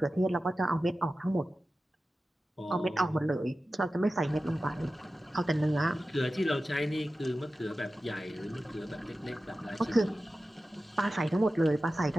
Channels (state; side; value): normal; both; correlation 0.94